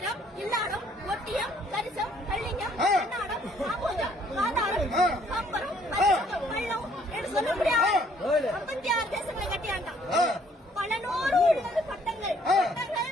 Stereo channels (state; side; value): normal; both; correlation 0.63